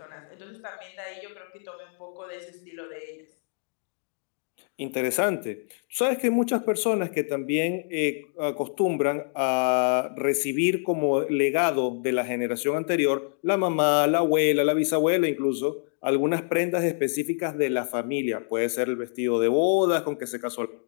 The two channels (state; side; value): silent; right; digital silence